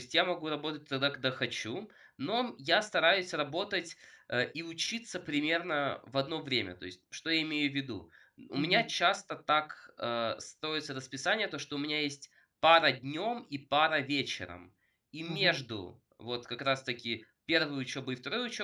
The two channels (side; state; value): both; identical; correlation 1.00